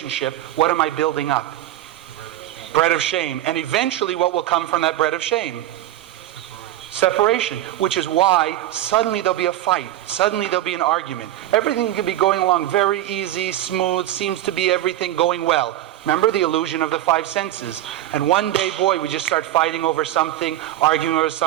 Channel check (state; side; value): quieter; left; 13.8 dB